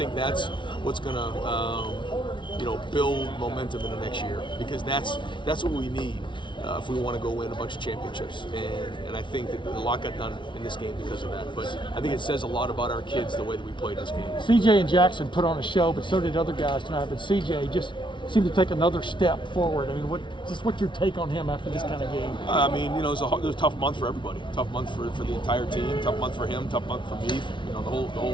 that's what's going to build momentum in the next year, because that's what we need if we want to go win a bunch of championships. And I think that a lot got done in this game because of that. But I think it says a lot about our kids, the way that we played this game. CJ and Jackson put on a show, but so did other guys tonight. But CJ just seemed to take another step forward. I mean, what's your take on him after this kind of game? I mean, it was a tough month for everybody. Tough month for the entire team. Tough month for him. Tough month for me. The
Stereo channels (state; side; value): late; right; 0.24 ms